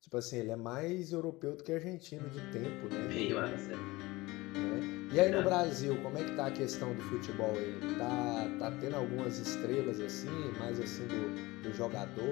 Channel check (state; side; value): quieter; right; 20.9 dB